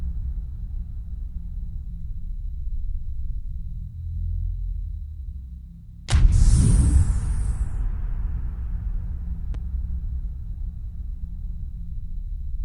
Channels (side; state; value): both; identical; correlation 1.00